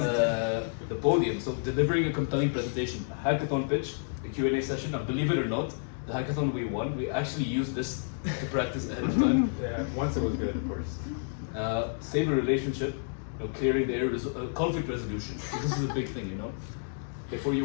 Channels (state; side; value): silent; right; digital silence